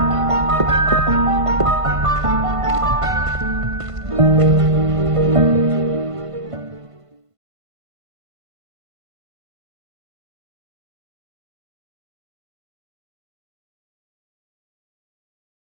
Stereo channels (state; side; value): late; left; 1.5 ms